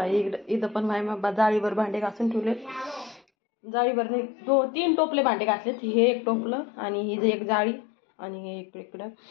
इथं पण माझ्या जाळीवर भांडे घासून ठेवलेत. जाळीवर नाही 2-3 टोपले भांडे घासलेत. हे एक टोपलं आणि ही एक जाळी आणि हे इकडं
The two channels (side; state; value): right; drops out; at 3.2 s